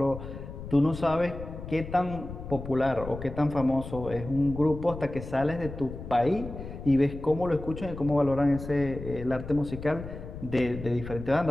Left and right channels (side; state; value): left; noise; rumble, 11 dB below the sound